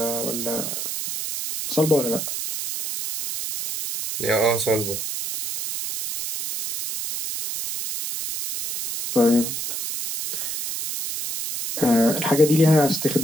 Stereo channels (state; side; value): noise; right; hiss, 5 dB below the sound